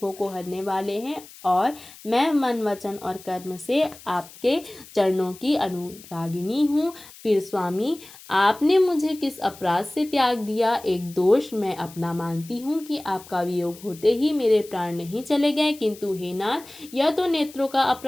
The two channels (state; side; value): noise; left; hiss, 20 dB below the sound